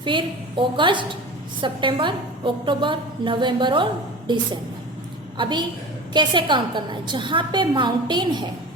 फिर अगस्त, सितंबर, अक्टूबर, नवंबर और दिसंबर. अभी कैसे काउंट करना है? जहाँ पे माउंटेन है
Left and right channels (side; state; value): both; normal; correlation 0.34